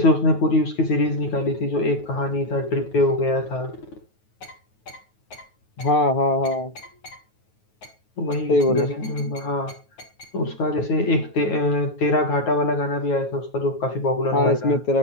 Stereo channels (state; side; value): late; right; 9.3 ms